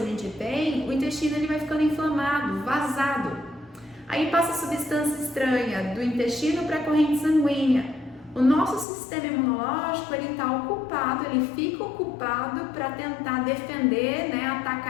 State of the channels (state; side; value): drops out; right; at 8.8 s